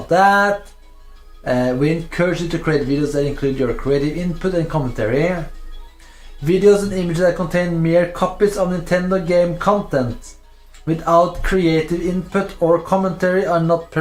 that. We encourage you to create videos that include your creative input and commentary. Videos and images that contain mere copies of Nintendo game content without creative input or commentary are not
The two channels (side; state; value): both; identical; correlation 1.00